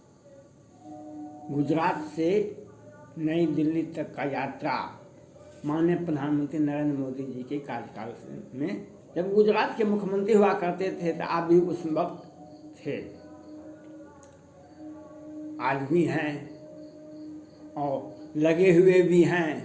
गुजरात से नई दिल्ली तक का यात्रा माननीय प्रधानमंत्री नरेंद्र मोदी जी के कार्यकाल में, जब गुजरात के मुख्यमंत्री हुआ करते थे तो आप भी उस वक्त थे, आज भी हैं और लगे हुए भी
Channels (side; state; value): both; identical; correlation 1.00